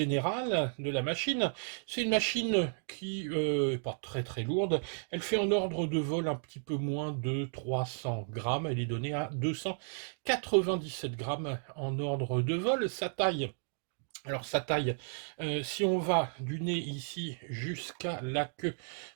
de la machine. C'est une machine qui n'est pas très très lourde, elle fait en ordre de vol un petit peu moins de 300 grammes, elle est donnée à 297 grammes en ordre de vol. Sa taille, alors sa taille, si on va du nez ici jusqu'à la queue,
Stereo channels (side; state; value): left; silent; 55 dB below the other